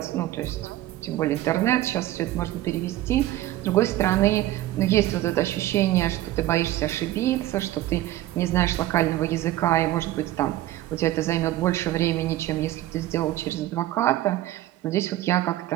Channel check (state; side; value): quieter; left; 15.0 dB